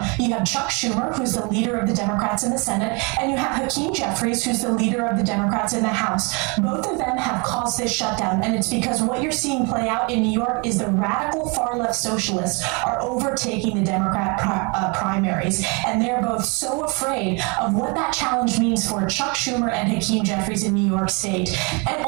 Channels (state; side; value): quieter; left; 31.1 dB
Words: You have Chuck Schumer, who's the leader of the Democrats in the Senate, and you have Hakeem Jeffries, who's the leader of the Democrats in the House. Both of them have caused this shutdown, and it's because what you're seeing play out in New York is the radical far-left socialists are overtaking the Democrat primaries, and they're both so afraid of what that challenge means for Chuck Schumer and Hakeem Jeffries in New York State. And